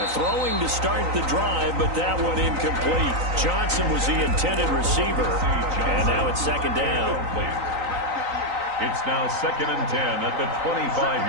Throwing to start the drive, but that one incomplete. Johnson was the intended receiver, and now it's second down. It's now 2nd and 10 at the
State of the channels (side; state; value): left; late; 3.9 ms